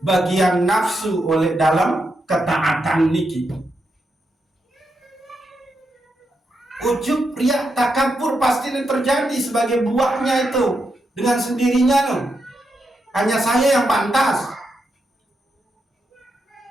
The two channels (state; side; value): normal; both; correlation 0.84